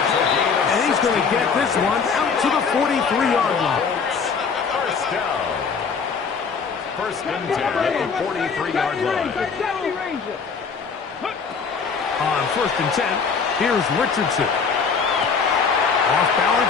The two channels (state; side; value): quieter; right; 5.6 dB